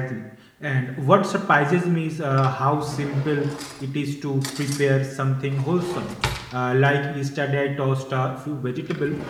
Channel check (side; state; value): both; identical; correlation 1.00